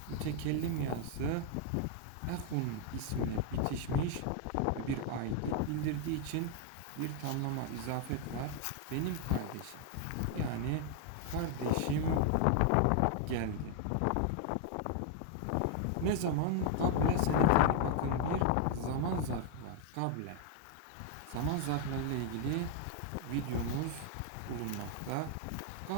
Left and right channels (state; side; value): different; both; correlation 0.00